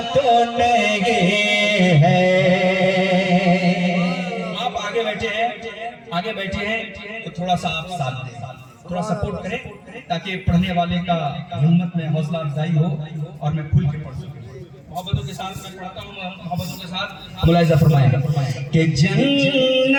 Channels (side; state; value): both; identical; correlation 1.00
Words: तो नहीं है। आप आगे बैठे हैं, आगे बैठे हैं तो थोड़ा सा आप साथ दें, थोड़ा सपोर्ट करें ताकि पढ़ने वाले का हिम्मत में हौसला अफजाई हो और मैं खुल के पढ़ सकूं। मोहब्बतों के साथ मैं पढ़ता हूँ, मोहब्बतों के साथ मुलाहिजा फरमाएगा कि